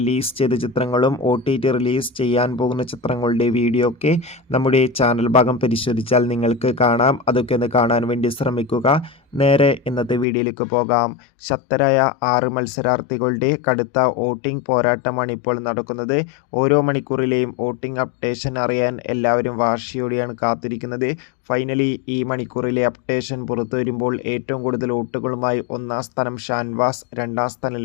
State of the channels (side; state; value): right; drops out; at 10.2 s